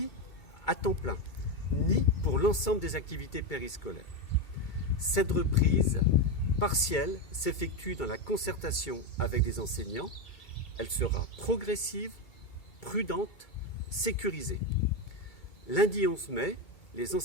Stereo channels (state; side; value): late; right; 2.3 ms